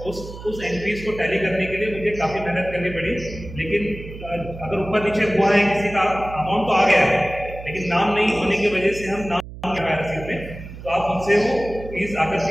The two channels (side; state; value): right; noise; hum, 13 dB below the sound